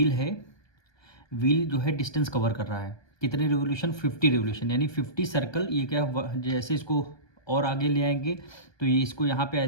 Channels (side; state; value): right; late; 1.2 ms